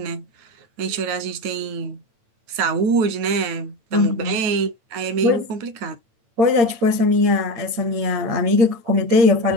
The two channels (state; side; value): late; left; 9.0 ms